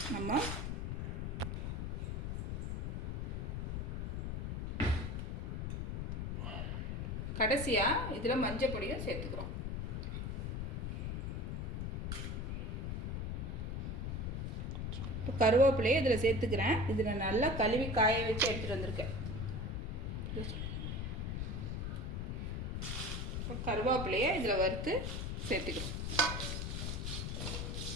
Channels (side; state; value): left; noise; rumble, 2 dB below the sound